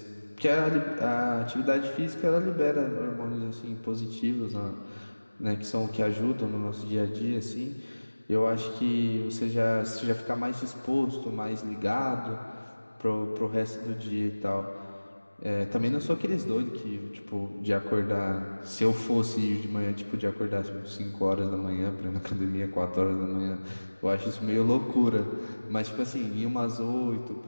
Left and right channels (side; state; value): both; inverted; correlation -1.00